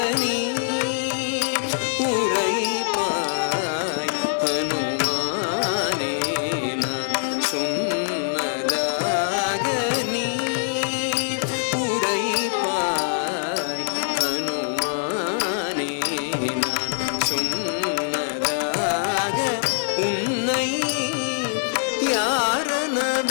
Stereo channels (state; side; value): silent; right; digital silence